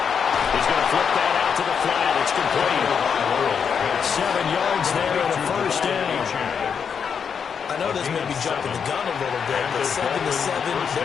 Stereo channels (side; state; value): right; quieter; 6.8 dB